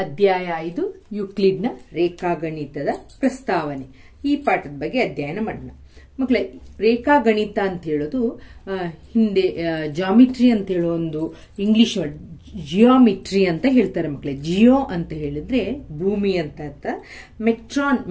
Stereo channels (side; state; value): both; identical; correlation 1.00